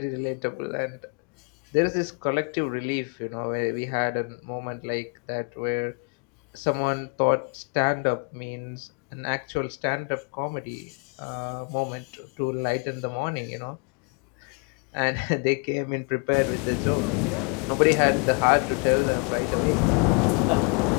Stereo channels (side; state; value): right; quieter; 36.2 dB